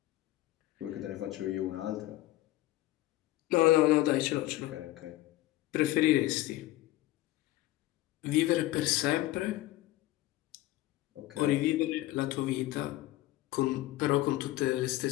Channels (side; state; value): right; quieter; 16.3 dB